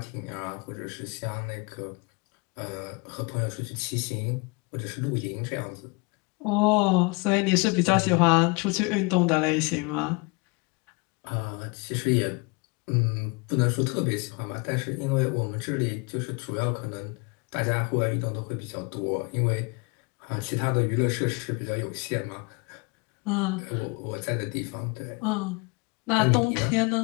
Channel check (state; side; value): quieter; right; 28.6 dB